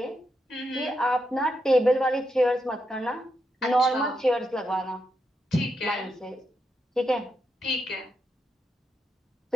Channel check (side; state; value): both; normal; correlation 0.83